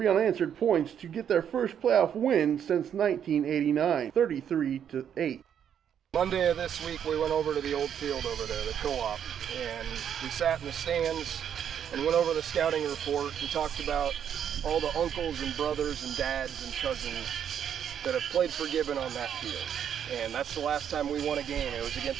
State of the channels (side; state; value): left; quieter; 8.8 dB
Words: unanswered points to get their first playoff win since 1989, 33-8. Monday of this week, we went over to the old field over there, the co-op, and we sat in the stands and went over the scouting report and talked about all the uncles and brothers and dads and cousins that have played for Gibbon on that field. And that's the last time we won a game. It was